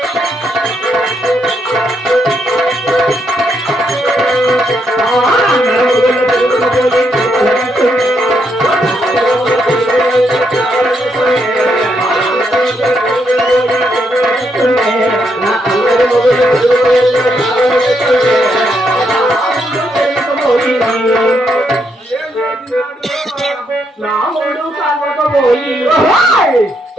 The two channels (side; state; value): both; normal; correlation 0.77